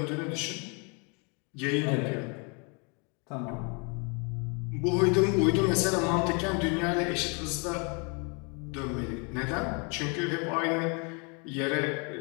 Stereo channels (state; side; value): quieter; right; 34.1 dB